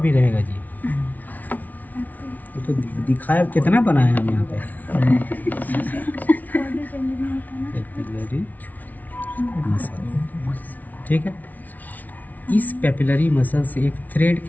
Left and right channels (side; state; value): right; late; 0.077 ms